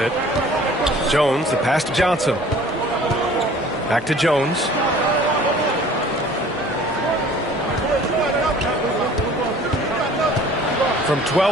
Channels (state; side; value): normal; both; correlation 0.49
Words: Jones, the pass to Johnson. Back to Jones. From